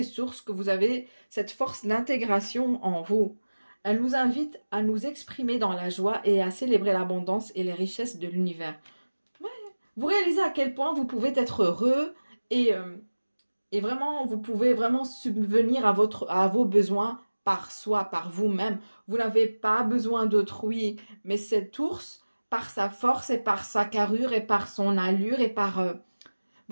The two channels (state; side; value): inverted; both; correlation -1.00